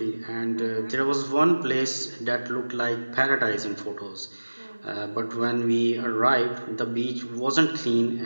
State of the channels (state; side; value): inverted; both; correlation -1.00